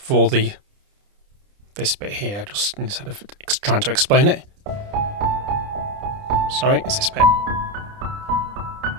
this bit here, just instead of trying to explain it. Sorry, it's this bit.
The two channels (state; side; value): late; left; 30 ms